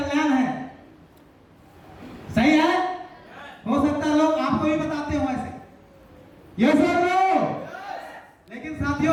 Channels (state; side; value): identical; both; correlation 1.00